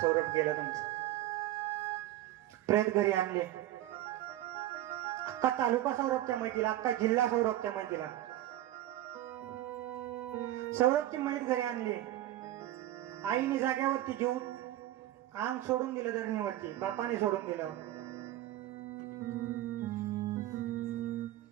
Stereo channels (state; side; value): quieter; left; 14.1 dB